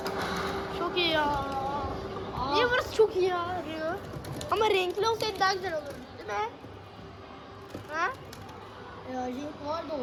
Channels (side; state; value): both; identical; correlation 1.00